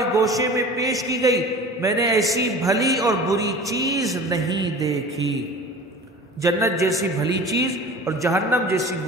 گوشے میں پیش کی گئی، میں نے ایسی بھلی اور بری چیز نہیں دیکھی۔ جنت جیسی بھلی چیز اور جہنم جیسی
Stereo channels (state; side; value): normal; both; correlation 0.39